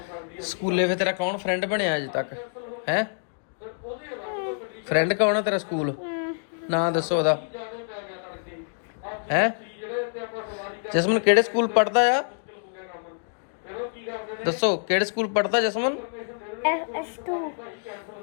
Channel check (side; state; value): right; silent; digital silence